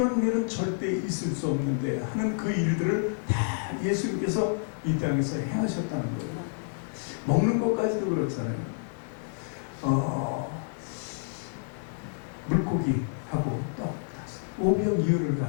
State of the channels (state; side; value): silent; right; digital silence